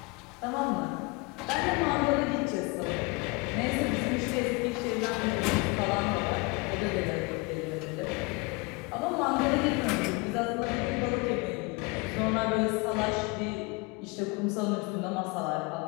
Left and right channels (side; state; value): right; quieter; 27.3 dB